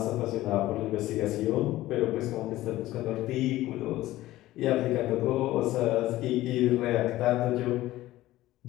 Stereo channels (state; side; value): quieter; right; 16.1 dB